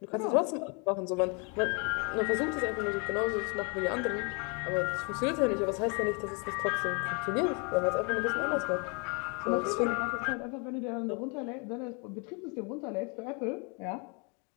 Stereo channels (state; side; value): quieter; right; 34.1 dB